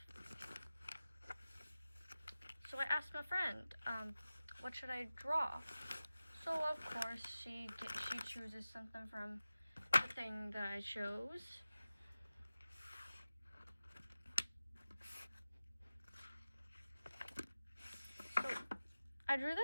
So I asked my friend, what should I draw? So of course she chooses something from the thing that I chose. So I drew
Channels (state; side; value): inverted; both; correlation -0.96